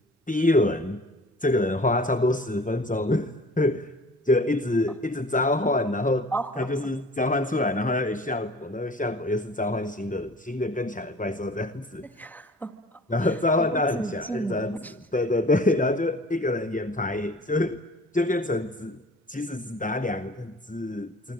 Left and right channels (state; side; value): normal; both; correlation 0.46